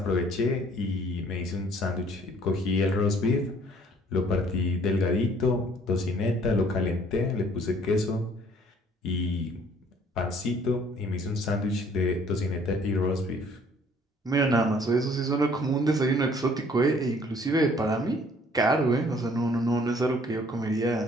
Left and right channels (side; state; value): both; normal; correlation 0.58